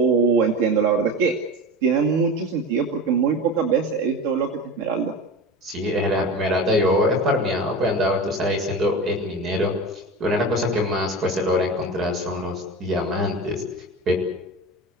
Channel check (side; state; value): both; normal; correlation 0.29